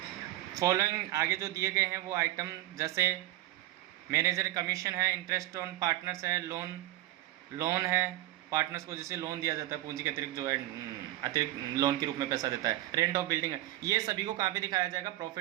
Following आगे जो दिए गए हैं वो आइटम, जैसे मैनेजर कमीशन है, interest on partners है, loan है, पार्टनर्स को जैसे लोन दिया जाता है पूंजी के अतिरिक्त, जो है अतिरिक्त लोन के रूप में पैसा देता है, रेंट ऑफ बिल्डिंग है, ये सभी को कहाँ पे दिखाया जाएगा?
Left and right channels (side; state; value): left; quieter; 16.3 dB